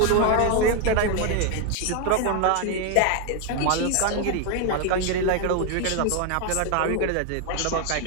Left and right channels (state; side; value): different; both; correlation 0.01